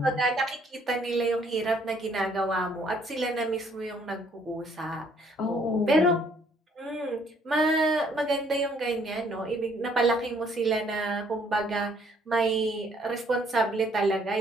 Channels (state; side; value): normal; both; correlation 0.64